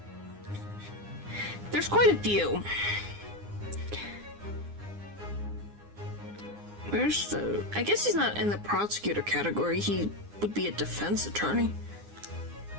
There's quite a few. Where's the... I guess he's not in the prosecutor category. He would be a defense attorney.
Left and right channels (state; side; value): late; left; 9.8 ms